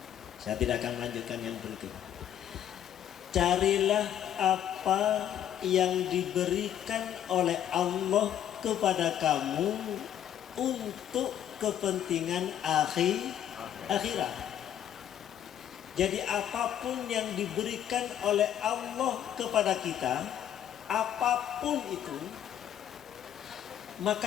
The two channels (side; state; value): right; quieter; 10.3 dB